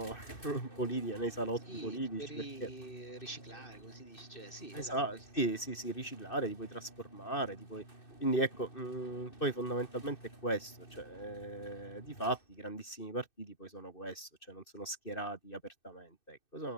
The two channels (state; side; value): late; right; 2.6 ms